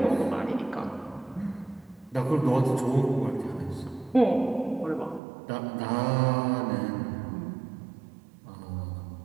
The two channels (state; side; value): drops out; left; at 5.2 s